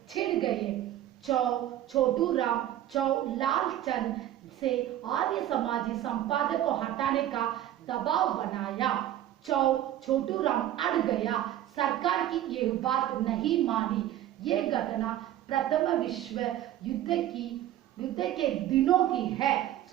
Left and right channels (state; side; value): quieter; left; 12.6 dB